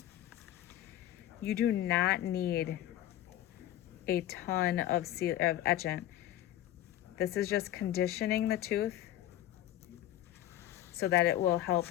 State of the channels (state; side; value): quieter; right; 13.1 dB